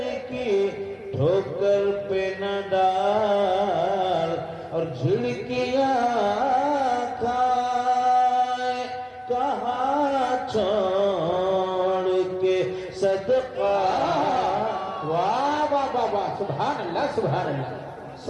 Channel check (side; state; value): both; identical; correlation 1.00